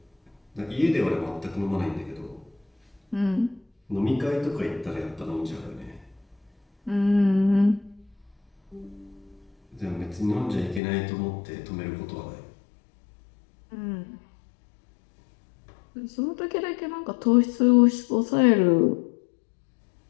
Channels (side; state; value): right; drops out; at 10.8 s